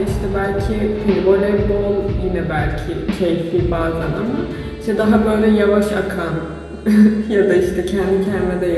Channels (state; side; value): identical; both; correlation 1.00